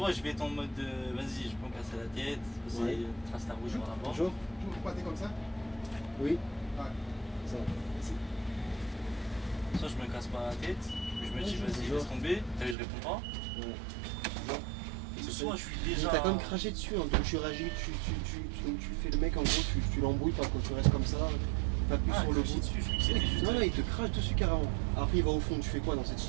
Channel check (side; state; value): left; drops out; at 12.8 s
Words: je vais être en mode vas-y, je peux me casser la tête, c'est Ouais. trace la rouge par la porte. Bonjour. Comme ça. Oui. Ouais. Ça. Soit je me casse pas la tête, je me dis vas-y, bonjour. laisse tomber, t'as vu, je réponds pas. Ouais. Ou soit je suis Mais déjà. t'as quand même craché dessus, hein, donc tu réagis, donc tu fais le mec en gros, tu l'embrouilles pas quand tu restes comme ça, pas plus Ah, sur le cracher bout. dessus, je crois que c'était juste. Non, non, il te crache dessus carrément. Après, il va au fond, tu fais quoi dans cette